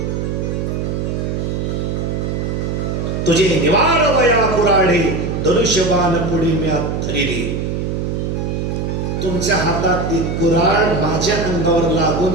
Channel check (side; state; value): right; noise; hum, 2 dB below the sound